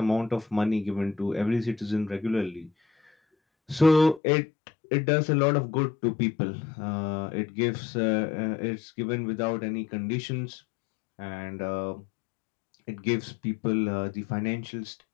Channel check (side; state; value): right; drops out; at 4.2 s